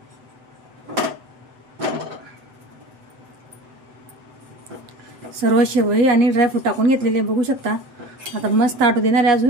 सर्व शेवई आणि ड्रायफ्रूट टाकून घेतलेले बघू शकता। आता मस्त आटू देणार आहे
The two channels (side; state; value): left; late; 7.9 ms